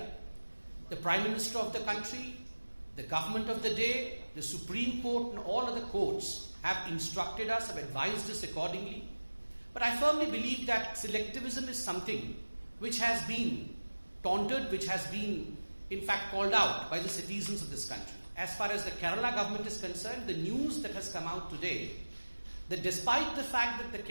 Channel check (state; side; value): inverted; both; correlation -1.00